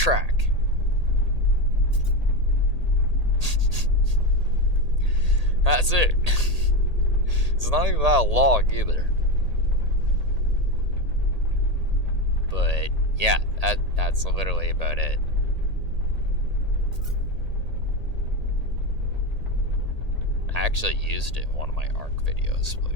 That's it. It's not even that long either. But yeah, that's literally about it. I actually used it in one of my ARC videos,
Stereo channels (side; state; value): left; late; 1.8 ms